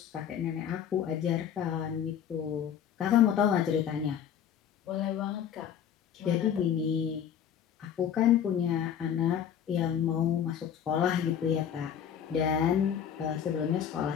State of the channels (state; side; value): quieter; right; 8.9 dB